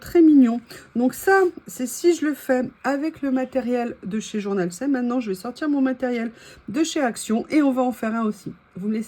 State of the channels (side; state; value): both; identical; correlation 1.00